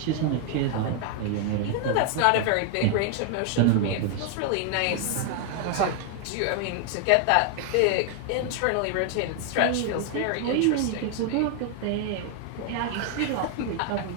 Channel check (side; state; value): both; different; correlation 0.00